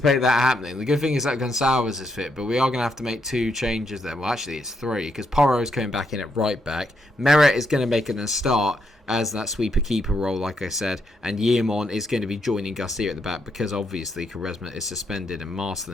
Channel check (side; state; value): both; normal; correlation 0.78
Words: that happening. The good thing is that Gonçalves is fit, but we are going to have to make 2 changes there. Well, actually, it's 3, because Porro is coming back in at right back. Meret is going to make a start as that sweeper-keeper role, like I said, and Yeomon is going to be joining Garcia at the back, because obviously Quaresma is suspended and